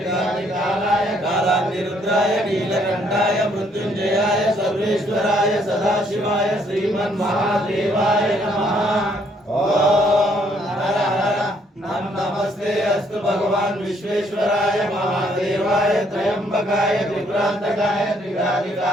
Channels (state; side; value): normal; both; correlation 0.68